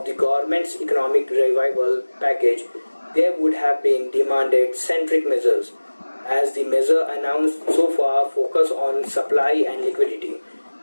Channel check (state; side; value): inverted; both; correlation -1.00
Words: the government's economic revival package, there would have been demanded centric measures, as the measure announced so far focus on supply and liquidity.